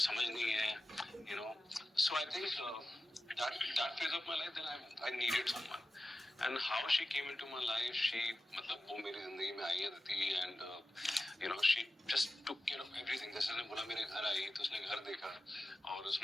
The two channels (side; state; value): both; normal; correlation 0.94